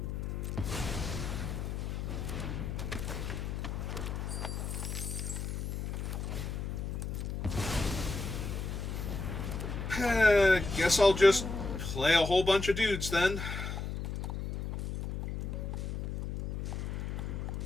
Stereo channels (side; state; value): left; noise; hum, 4 dB below the sound